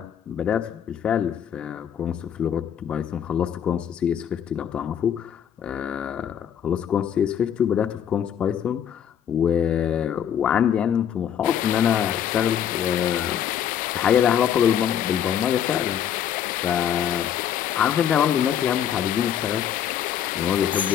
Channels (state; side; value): quieter; right; 9.3 dB